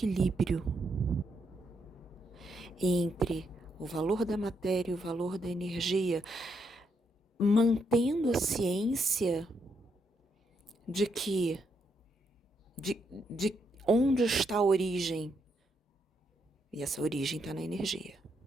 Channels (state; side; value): normal; both; correlation 0.78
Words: entre o valor da matéria e o valor da energia, mantendo a ciência de que de onde está a origem. E essa origem está na energia.